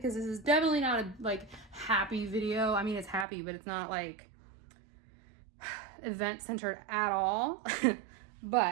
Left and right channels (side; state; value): left; drops out; at 3.2 s